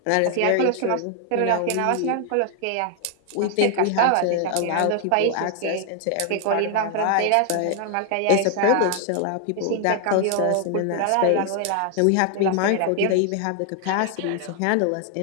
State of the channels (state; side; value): different; both; correlation 0.00